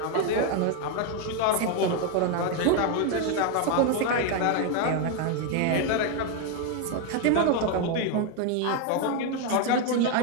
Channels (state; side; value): different; both; correlation 0.01